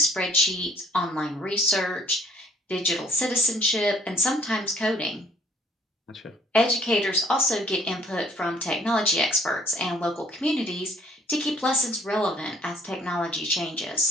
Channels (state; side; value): normal; both; correlation 0.59